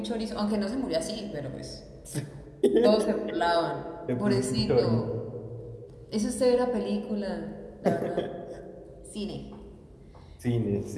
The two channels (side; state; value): both; identical; correlation 1.00